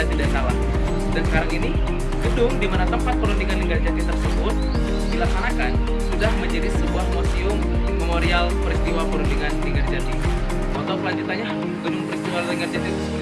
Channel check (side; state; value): both; identical; correlation 1.00